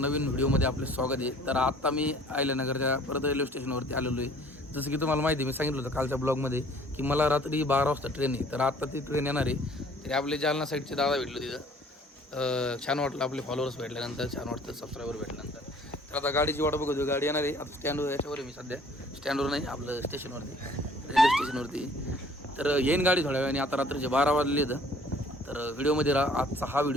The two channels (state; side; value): normal; both; correlation 0.54